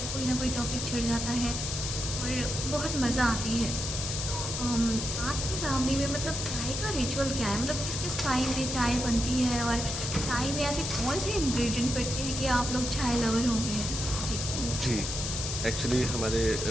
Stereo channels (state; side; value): noise; left; hiss, 4 dB below the sound